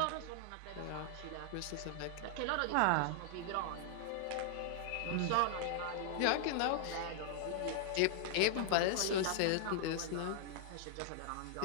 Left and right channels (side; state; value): both; different; correlation -0.01